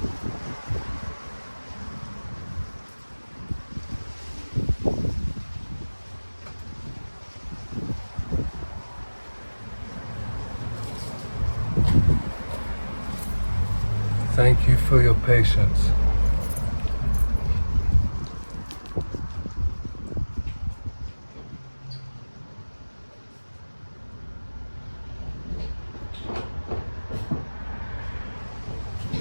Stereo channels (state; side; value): inverted; both; correlation -1.00